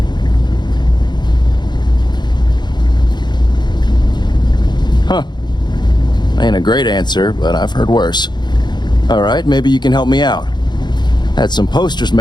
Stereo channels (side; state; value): right; late; 0.21 ms